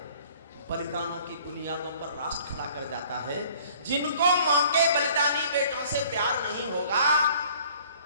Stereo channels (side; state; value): both; inverted; correlation -0.53